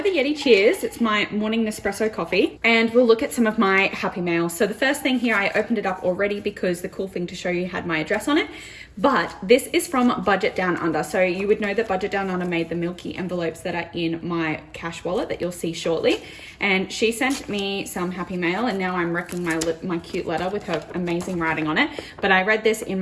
a Yeti Cheers. It's my morning Nespresso coffee, and we'll look at some of my happy mail. So the first thing here, I opened it up already because the cool thing to show you had my address on it, but this is from Budget Down Under. So you would know that Budget Down Under made the milky envelopes that are in my cash wallet that you'll see shortly. And she sent me some happy mail, and now I'm wrecking my cute letter with her amazing writing on it. But I read this in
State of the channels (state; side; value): identical; both; correlation 1.00